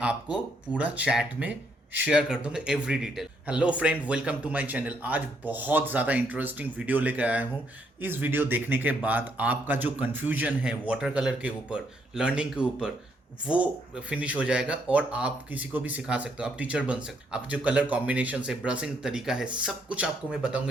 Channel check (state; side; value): normal; both; correlation 0.73